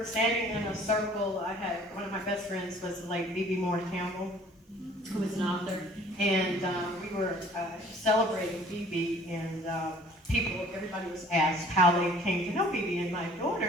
standing in a circle. I had one of my best friends was the late B.B. Moore Campbell, who was an author, and we were celebrating B.B. and everybody was asked how they came to know B.B. and my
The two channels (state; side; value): normal; both; correlation 0.53